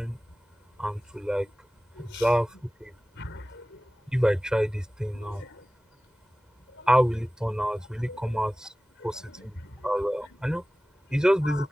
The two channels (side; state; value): both; normal; correlation 0.97